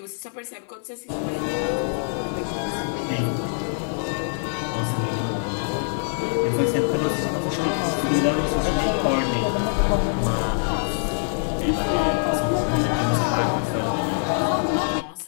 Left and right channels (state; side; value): silent; right; digital silence